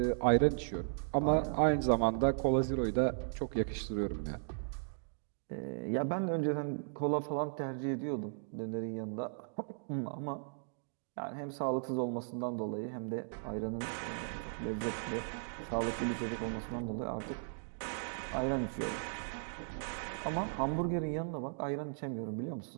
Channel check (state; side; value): silent; left; digital silence